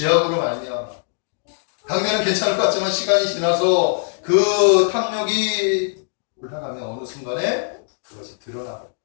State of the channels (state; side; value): silent; right; 65 dB below the other